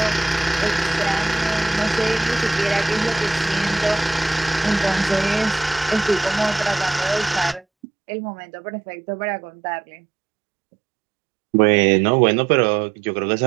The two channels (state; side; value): drops out; left; at 7.7 s